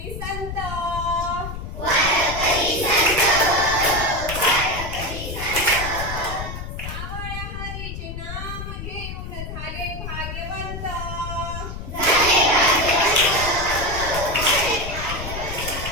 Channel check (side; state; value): left; noise; rumble, 7 dB below the sound